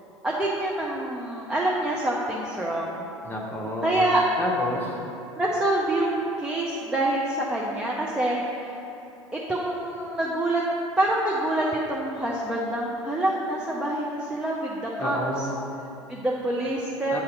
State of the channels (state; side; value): normal; both; correlation 0.61